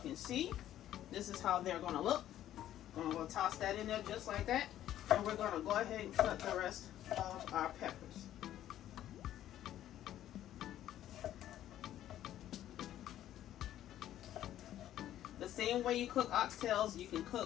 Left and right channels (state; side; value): quieter; right; 12.2 dB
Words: see, this is how they're gonna look. I'm going to toss that in there just like that, and we're going to go ahead and cut the rest of our peppers. The same way you cook oxtails, you can